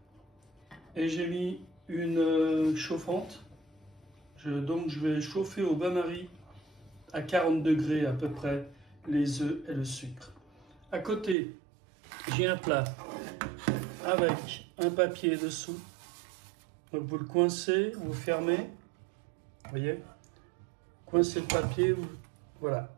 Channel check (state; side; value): drops out; left; at 11.4 s